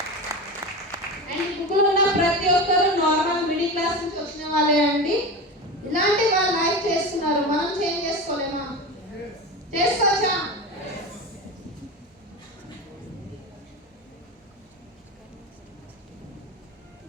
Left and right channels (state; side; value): normal; both; correlation 0.25